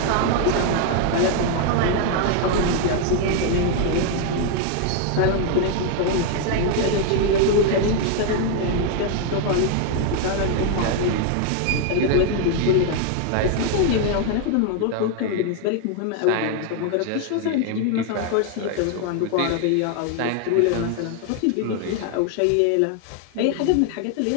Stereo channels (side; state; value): both; different; correlation 0.00